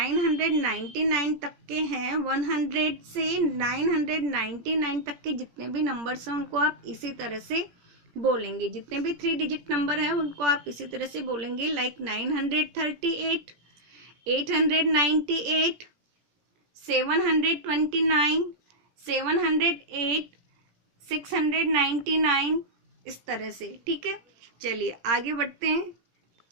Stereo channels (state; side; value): late; left; 17 ms